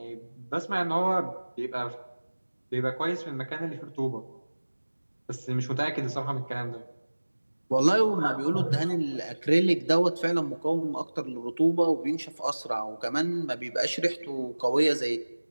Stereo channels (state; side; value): inverted; both; correlation -1.00